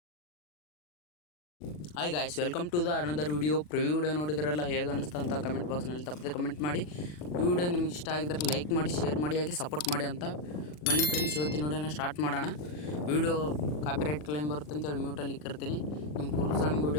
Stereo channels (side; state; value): right; late; 40 ms